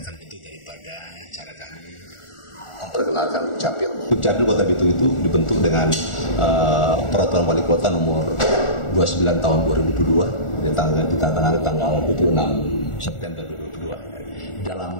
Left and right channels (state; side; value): late; right; 1.4 ms